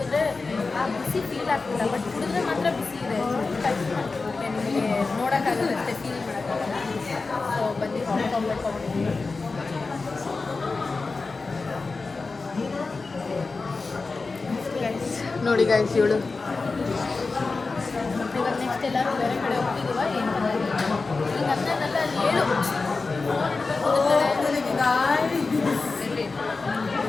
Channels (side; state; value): right; quieter; 4.0 dB